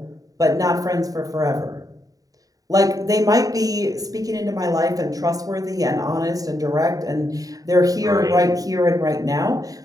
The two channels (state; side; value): late; left; 0.18 ms